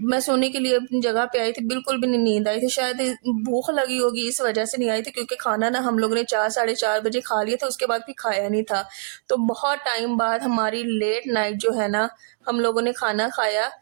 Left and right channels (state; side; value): silent; left; digital silence